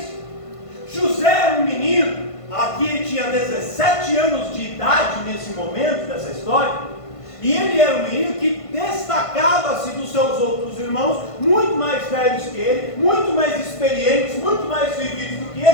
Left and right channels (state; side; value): late; right; 1.5 ms